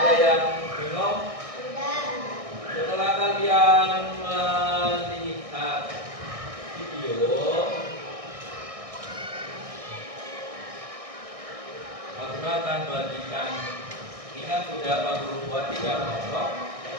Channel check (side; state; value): left; late; 1.6 ms